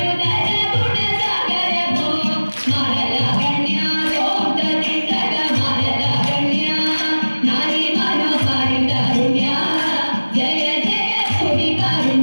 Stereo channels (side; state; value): both; inverted; correlation -1.00